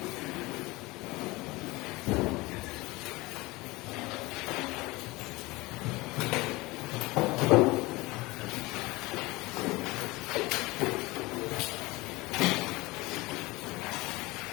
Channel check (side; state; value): right; quieter; 21.8 dB